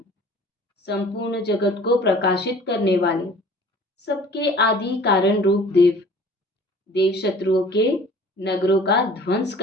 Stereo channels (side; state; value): both; normal; correlation 0.48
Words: संपूर्ण जगत को प्रकाशित करने वाले, सबके आदि कारण रूप देव, देव शत्रुओं के नगरों का ध्वंस